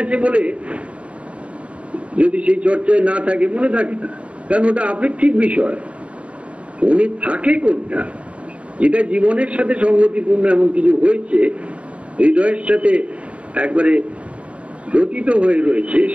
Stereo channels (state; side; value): late; left; 0.062 ms